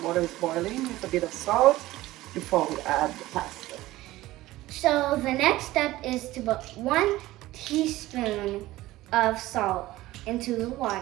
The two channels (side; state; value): left; quieter; 17.0 dB